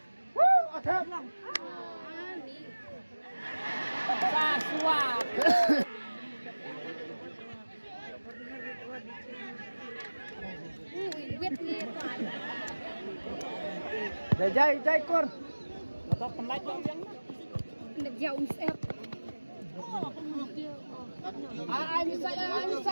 Thép. Và xua. Jai kur. Atau penlait yang Nak jauh siap. ini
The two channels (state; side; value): inverted; both; correlation -1.00